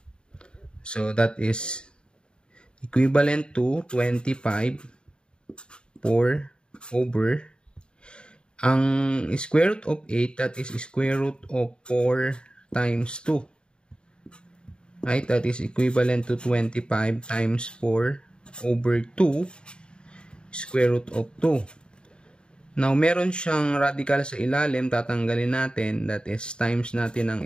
So that is equivalent to 25 4 over ang square root of 8, that is square root of 4 times 2. Right? That is equivalent to 25 times 4 over 2 square root of 2. Now, meron siyang radical sa ilalim. Tatanggalin natin. That is, times natin ang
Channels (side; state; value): right; late; 0.051 ms